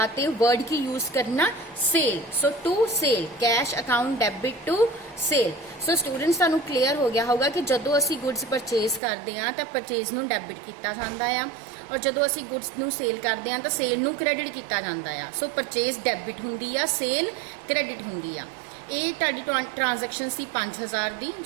ते वर्ड की यूज करना sale. So to sale, cash account debit to sale. So students तुहानूं क्लीयर हो गया होगा कि जदों असी गुड्स परचेज करते हैं तो परचेज नूं डेबिट किया जाता है, और जदों असी गुड्स नूं सेल करते हैं तो सेल नूं क्रेडिट किया जाता है। सो परचेज डेबिट हुंदी आ, सेल क्रेडिट हुंदी आ। ये तुहाडी ट्रांजैक्शन सी 5,000 दी।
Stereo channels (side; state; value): left; drops out; at 9.0 s